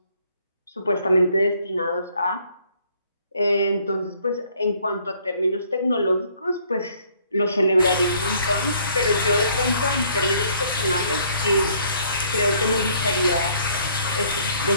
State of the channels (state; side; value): inverted; both; correlation -0.62